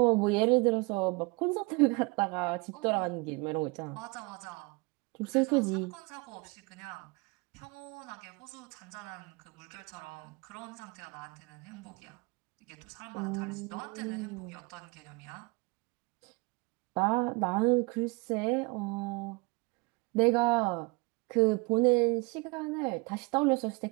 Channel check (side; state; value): left; quieter; 27.5 dB